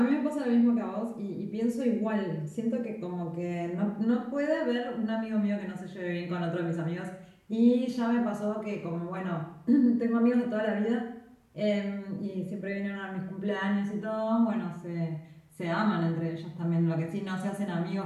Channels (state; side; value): identical; both; correlation 1.00